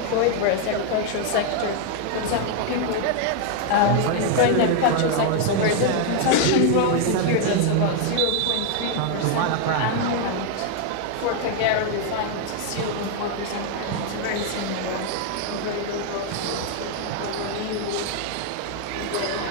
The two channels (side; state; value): both; different; correlation 0.00